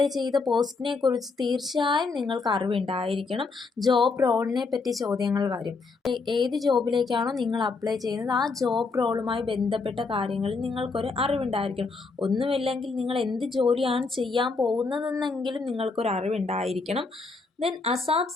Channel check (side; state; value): right; quieter; 4.2 dB